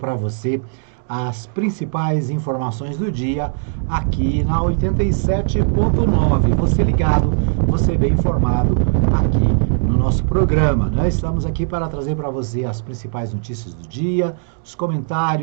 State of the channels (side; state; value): left; silent; digital silence